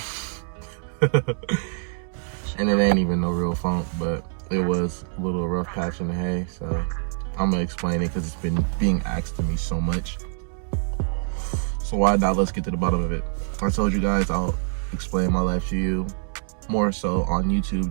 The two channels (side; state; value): left; silent; digital silence